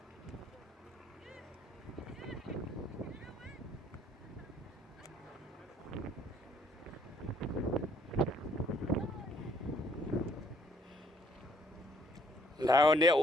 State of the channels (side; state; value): both; normal; correlation 0.64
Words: Là, on est